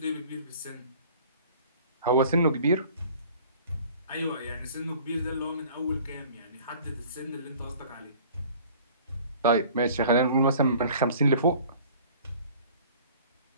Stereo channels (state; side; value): inverted; both; correlation -0.49